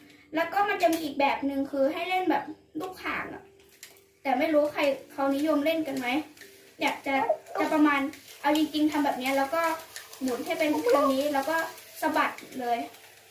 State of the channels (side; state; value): both; identical; correlation 1.00